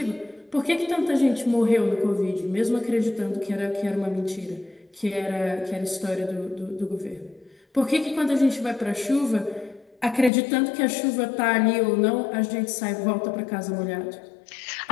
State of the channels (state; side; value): drops out; right; at 10.3 s